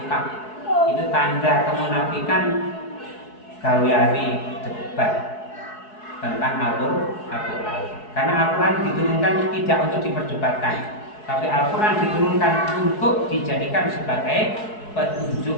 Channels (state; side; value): late; right; 4.7 ms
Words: itu tanda kemunafikan gaweane debat tentang Al-Quran. Karena Al-Quran diturunkan tidak untuk diperdebatkan, tapi Al-Quran diturunkan untuk dijadikan sebagai